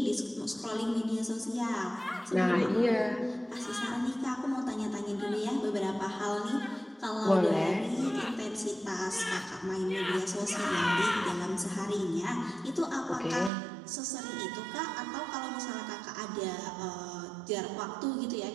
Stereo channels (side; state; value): left; drops out; at 13.5 s